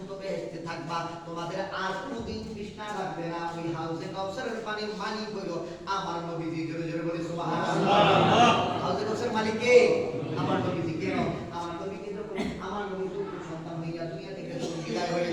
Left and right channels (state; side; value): identical; both; correlation 1.00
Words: বেহেশতে থাকবা, তোমাদের আর কোনোদিন তৃষ্ণা লাগবে না। ওই হাউজে কাউসারের পানির মালিক হইল আমার নবীজি। জোরে জোরে বলি সুবহানাল্লাহ। হাউজে কাউসারের মালিক কে? আমার নবীজি। কেন? আমার নবীকে যখন আমার নবী সন্তান হইয়া দুনিয়া থেকে বিদায় হয়ে